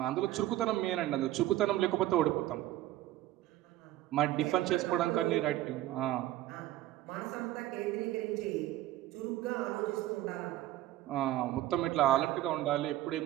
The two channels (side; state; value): left; quieter; 14.9 dB